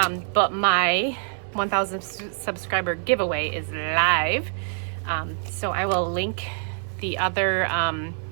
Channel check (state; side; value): silent; left; digital silence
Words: my 1,000 subscriber giveaway is live. So I will link the other